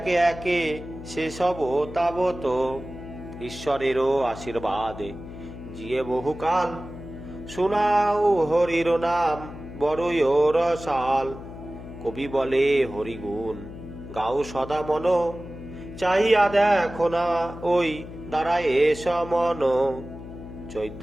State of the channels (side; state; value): left; noise; hum, 13 dB below the sound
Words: একে সে সব তাবত। ঈশ্বরেরও আশীর্বাদে জিয়ে বহুকাল, শোনাও হরির নাম বড়ই রসাল। কবি বলে হরিগুণ গাও সদা মন, চাহিয়া দেখো না ওই দাঁড়ায় সমন।